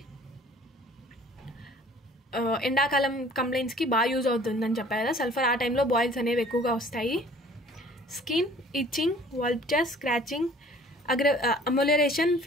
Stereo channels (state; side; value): normal; both; correlation 0.52